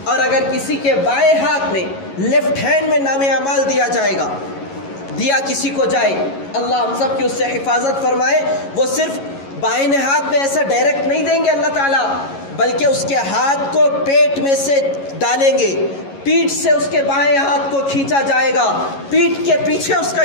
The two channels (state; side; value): late; right; 11 ms